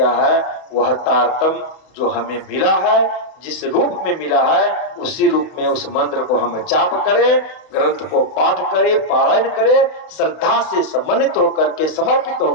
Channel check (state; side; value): late; right; 32 ms